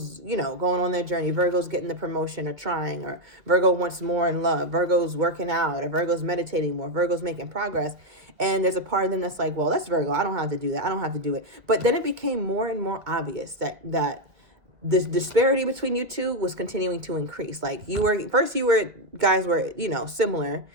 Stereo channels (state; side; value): late; left; 2.1 ms